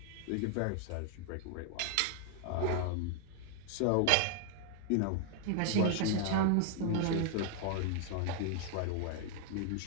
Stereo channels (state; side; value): different; both; correlation 0.00